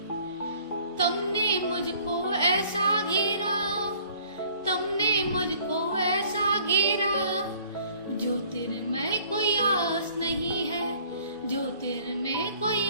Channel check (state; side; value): inverted; both; correlation -0.55